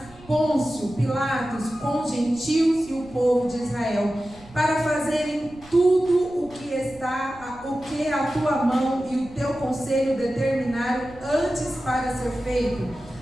Pôncio, Pilatos, com gentios e o povo de Israel, para fazerem tudo o que a tua mão e o teu conselho determinaram antes para ser feito.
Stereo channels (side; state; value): right; noise; rumble, 22 dB below the sound